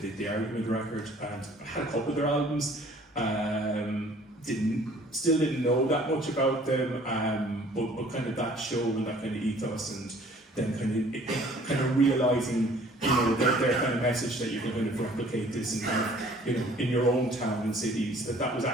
the Argument record, and I had a couple of their albums. Still didn't know that much about them, but kind of that show and that kind of ethos, and then kind of realising their kind of message that you can kind of replicate this and in your own town and cities, that was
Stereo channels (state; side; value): normal; both; correlation 0.54